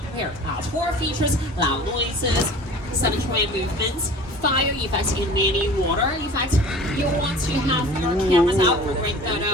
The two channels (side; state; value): both; normal; correlation 0.43